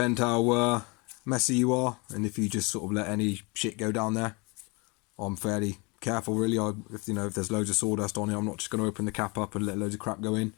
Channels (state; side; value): quieter; right; 29.2 dB